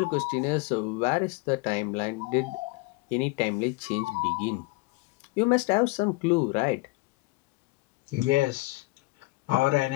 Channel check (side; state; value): right; quieter; 23.8 dB